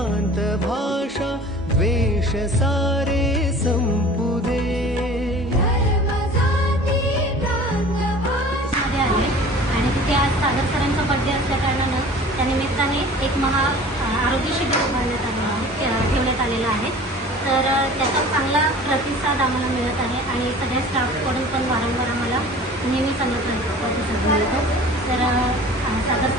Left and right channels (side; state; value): both; normal; correlation 0.44